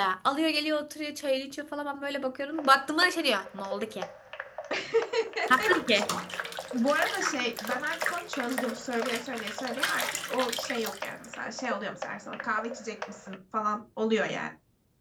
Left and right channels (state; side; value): identical; both; correlation 1.00